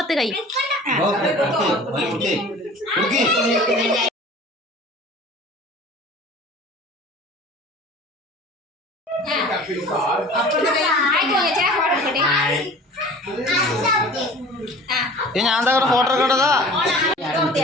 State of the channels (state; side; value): normal; both; correlation 0.43